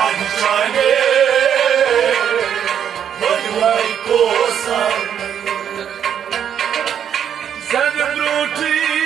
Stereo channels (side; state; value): left; quieter; 8.8 dB